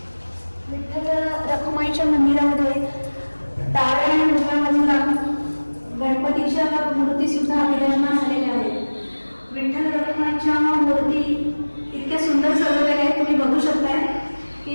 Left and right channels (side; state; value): both; inverted; correlation -1.00